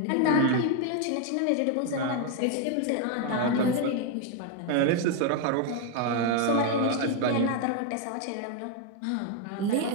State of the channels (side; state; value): both; different; correlation 0.01